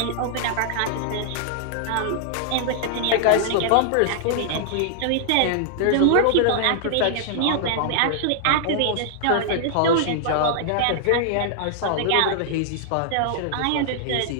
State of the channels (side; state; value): both; different; correlation -0.01